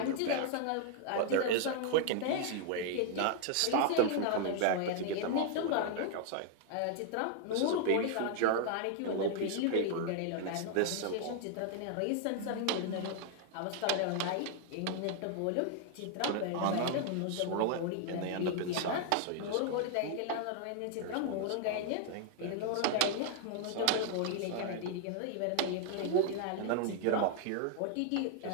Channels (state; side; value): different; both; correlation 0.00